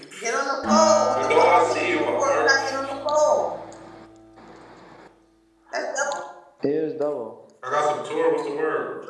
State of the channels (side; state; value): both; identical; correlation 1.00